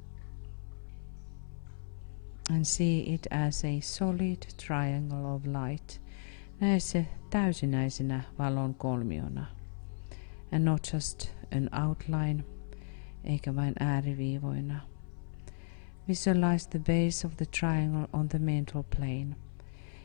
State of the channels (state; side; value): silent; right; 55 dB below the other